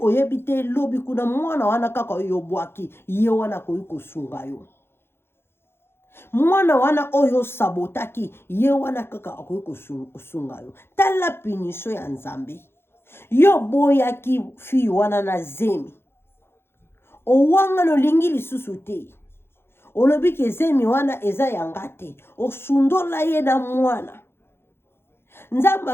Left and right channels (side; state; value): right; late; 0.11 ms